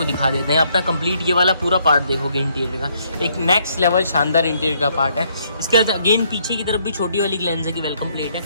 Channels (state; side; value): inverted; both; correlation -0.70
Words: दिखा देते हैं। अपना कंप्लीट ये वाला पूरा पार्ट देखोगे इंटीरियर का, एक नेक्स्ट लेवल शानदार इंटीरियर का पार्ट है। इसके बाद अगेन पीछे की तरफ भी छोटी वाली ग्लेंजा की वेलकम प्लेट